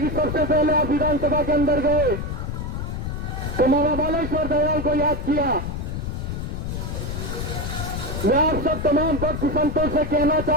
कि सबसे पहले आप विधानसभा के अंदर गए तो मामा बालेश्वर दयाल को याद किया। मैं आप सब तमाम भक्त संतों से कहना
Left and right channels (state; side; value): noise; left; rumble, 4 dB below the sound